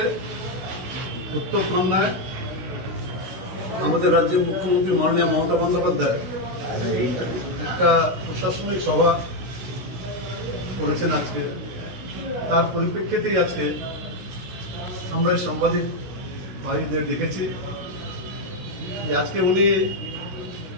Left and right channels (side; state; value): left; late; 16 ms